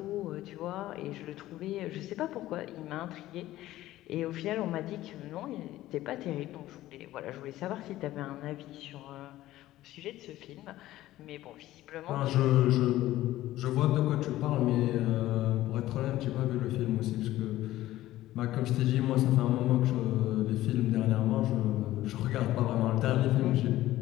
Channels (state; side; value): quieter; right; 15.3 dB